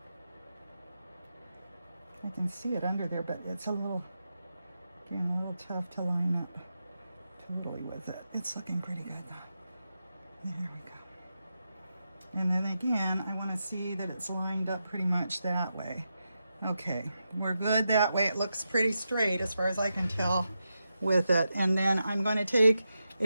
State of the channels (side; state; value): both; inverted; correlation -0.88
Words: I can see it under there, but it's a little, again, a little tough to line up totally with it. It's looking pretty good though. There we go. And then again, I want to see that it's lined up pretty much that way. Okay, we're good that way. It looks pretty straight as far as I can tell with it. And then I'm going to take